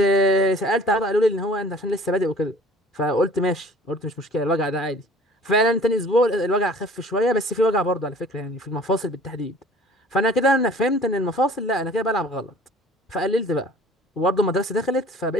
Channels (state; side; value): normal; both; correlation 0.48